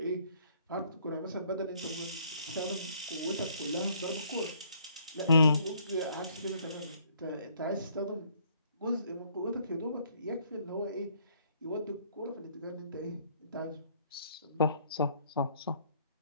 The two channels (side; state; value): both; inverted; correlation -0.63